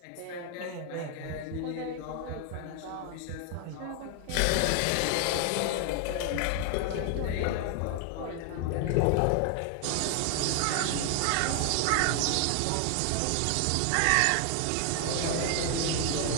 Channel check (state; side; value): different; both; correlation 0.00